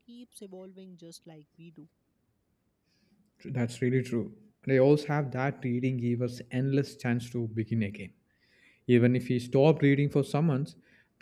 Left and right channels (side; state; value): both; identical; correlation 1.00